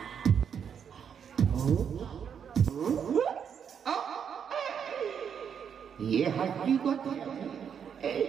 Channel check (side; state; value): left; quieter; 7.6 dB